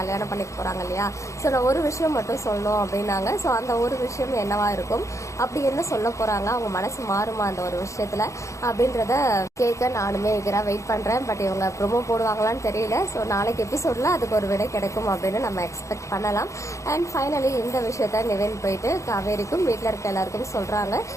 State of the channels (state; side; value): late; right; 0.15 ms